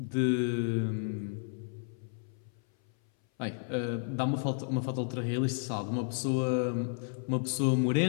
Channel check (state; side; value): silent; right; 56 dB below the other